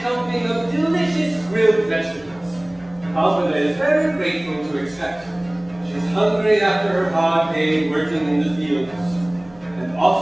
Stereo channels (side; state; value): left; noise; hum, 27 dB below the sound